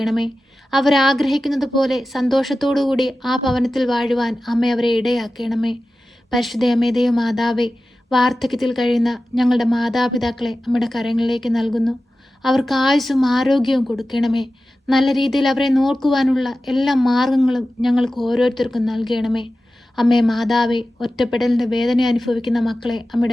അവരാഗ്രഹിക്കുന്നത് പോലെ സന്തോഷത്തോടുകൂടി ആ ഭവനത്തിൽ വാഴുവാൻ അമ്മ അവരെ ഇടയാക്കണമേ. പരിശുദ്ധ അമ്മേ, ദൈവമാതാവേ, വാർദ്ധക്യത്തിൽ കഴിയുന്ന ഞങ്ങളുടെ മാതാപിതാക്കളെ അമ്മയുടെ കരങ്ങളിലേക്ക് നൽകുന്നു. അവർക്ക് ആയുസ്സും ആരോഗ്യവും കൊടുക്കണമേ. നല്ല രീതിയിൽ അവരെ നോക്കുവാനുള്ള എല്ലാ മാർഗങ്ങളും ഞങ്ങൾക്ക് ഓരോരുത്തർക്കും നൽകണമേ. അമ്മേ മാതാവേ, ഒറ്റപ്പെടലിൻ്റെ വേദന അനുഭവിക്കുന്ന മക്കളെ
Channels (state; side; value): normal; both; correlation 0.94